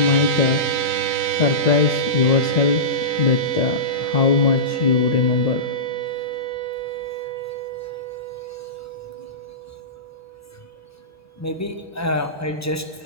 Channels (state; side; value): normal; both; correlation -0.20